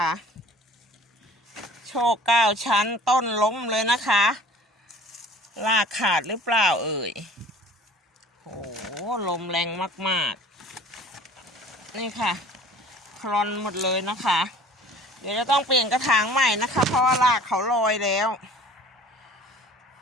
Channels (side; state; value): both; normal; correlation 0.47